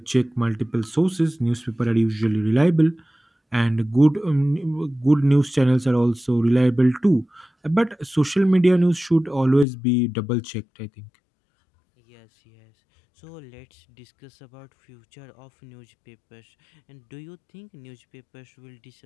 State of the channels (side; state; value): right; drops out; at 9.7 s